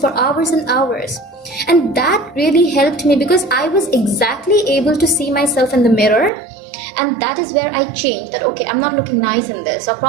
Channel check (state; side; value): drops out; left; at 6.3 s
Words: hours and hours. And that really helped me because I was exactly able to see myself in the mirror. And that is where I changed that, okay, I'm not looking nice in this, or